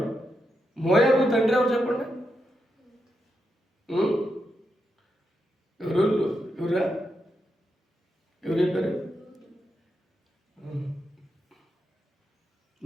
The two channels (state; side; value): normal; both; correlation 0.84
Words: మోయాబు తండ్రి ఎవరు చెప్పండి? ఎవరా? ఎవరు చెప్పారు?